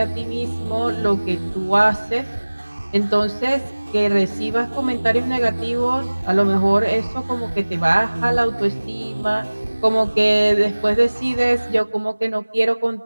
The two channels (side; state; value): both; inverted; correlation -1.00